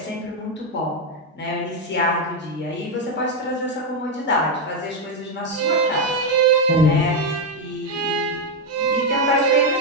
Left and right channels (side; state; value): both; normal; correlation 0.04